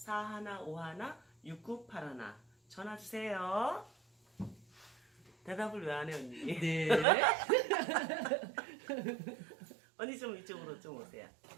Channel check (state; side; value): drops out; left; at 7.1 s